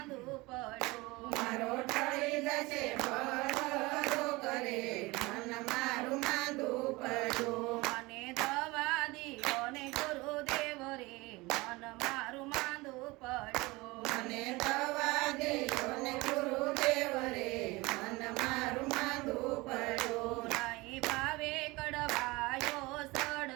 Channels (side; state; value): left; quieter; 22.7 dB